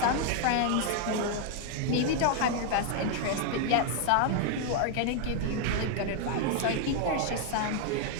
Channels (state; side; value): different; both; correlation 0.00